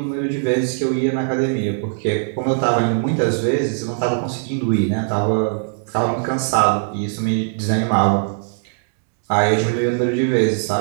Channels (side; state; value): left; silent; digital silence